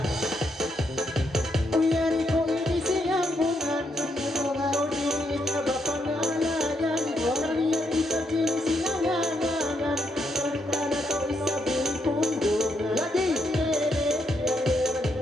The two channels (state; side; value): normal; both; correlation 0.78